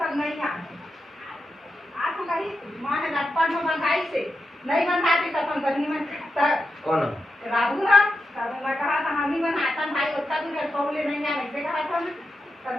नहीं बनवाती तो कंपनी में कौन राहू ना तब मैं कहा था हम ही बनाता भाई उतना दूर है पौले नहीं आ ऐसे कहा था मैं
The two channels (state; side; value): normal; both; correlation 0.88